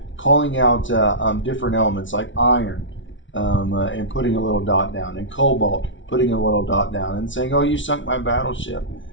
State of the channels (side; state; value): right; late; 0.56 ms